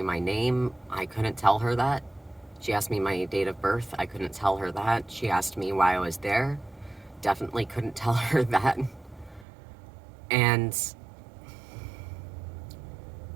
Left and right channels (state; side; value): drops out; left; at 9.5 s